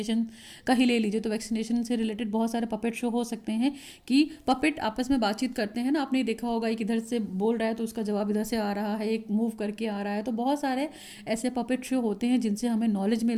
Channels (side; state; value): both; identical; correlation 1.00